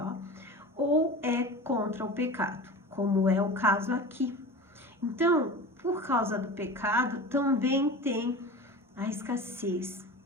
ou é contra o pecado, como é o caso aqui. Então, por causa do pecado, também tem a escassez.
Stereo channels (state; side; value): normal; both; correlation 0.33